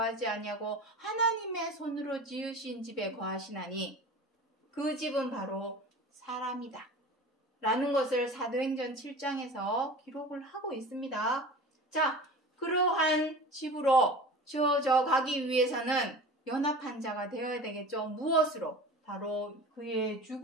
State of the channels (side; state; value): both; normal; correlation 0.36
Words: 아니하고 하나님의 손으로 지으신 집에 거하시나니 그 집은 바로 사람이다 라는 것을 사도행전 7장에서 기록을 하고 있습니다. 자, 그러한 집으로 지어져 가기 위해서는 연합한 자가 되어야 되겠죠. 무엇으로? 바로 그의